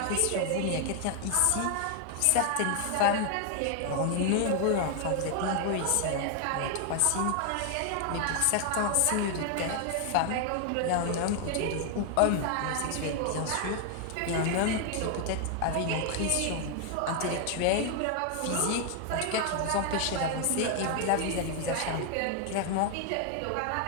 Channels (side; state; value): both; different; correlation 0.00